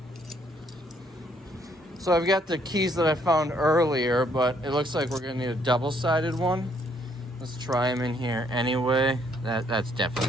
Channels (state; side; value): normal; both; correlation 0.68